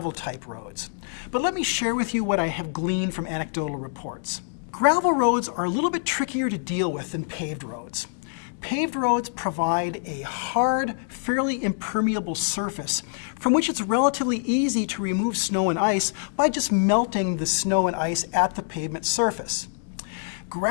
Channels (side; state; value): right; silent; digital silence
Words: roads. But let me share with you what I have gleaned from anecdotal reports. Gravel roads are a little bit trickier to deal with than paved roads. Paved roads provide a hard, fairly impermeable surface from which it's relatively easy to remove snow and ice by just melting the snow and ice at the pavement surface.